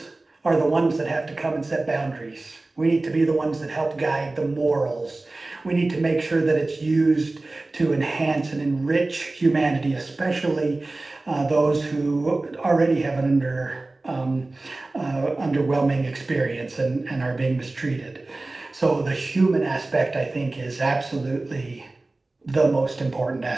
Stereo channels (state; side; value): quieter; left; 3.1 dB